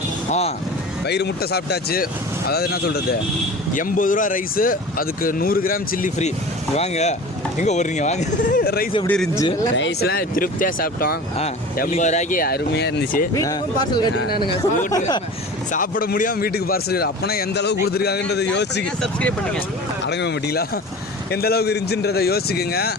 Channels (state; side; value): normal; both; correlation 0.37